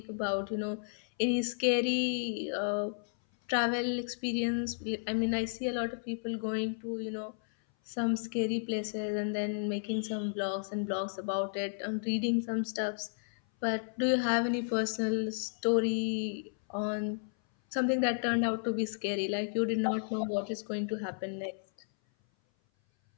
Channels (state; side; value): silent; right; 56 dB below the other